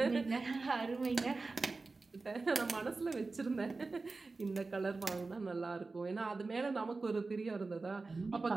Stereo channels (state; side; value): quieter; left; 3.8 dB